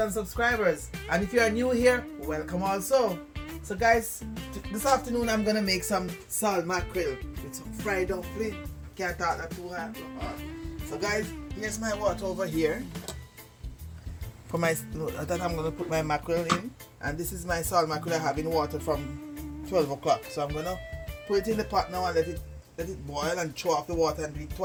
subscribers. And if you are new here, welcome also. So guys, this afternoon I'm gonna make some salt mackerel with some fried dumpling. Can't talk that too hard. So guys, here's my water over here. For my that I'm gonna put my mackerel in. And this is my salt mackerel I have in water from 12 o'clock. So I'm gonna put it in the pot now and let it boil and throw off the water and do it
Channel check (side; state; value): both; identical; correlation 1.00